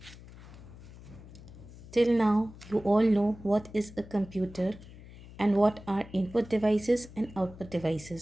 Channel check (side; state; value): left; noise; hum, 18 dB below the sound